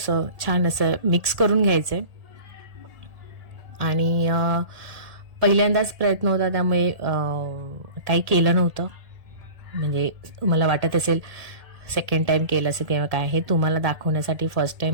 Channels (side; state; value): left; late; 1.8 ms